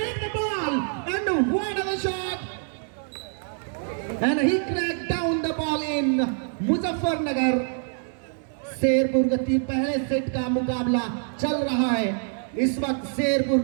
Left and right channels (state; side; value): silent; left; 55 dB below the other